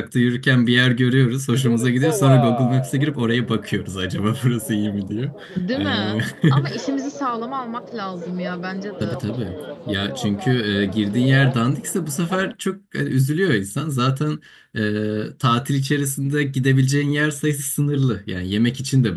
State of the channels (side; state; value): both; identical; correlation 1.00